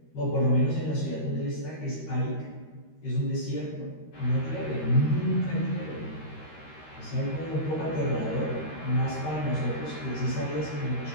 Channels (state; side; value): late; right; 13 ms